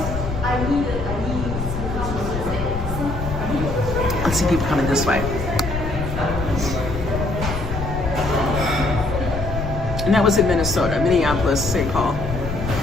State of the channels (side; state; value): left; noise; rumble, 6 dB below the sound